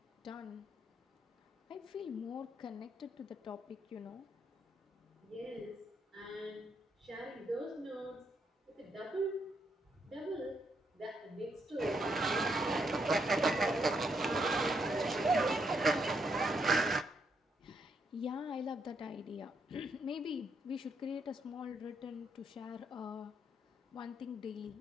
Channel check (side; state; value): both; normal; correlation 0.77